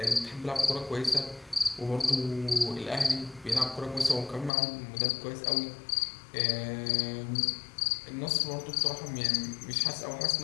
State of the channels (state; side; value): drops out; right; at 4.5 s